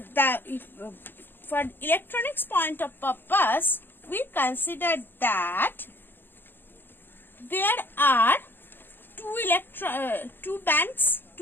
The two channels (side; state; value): right; late; 0.099 ms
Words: electronics point of purpose, we consider that there are two bands,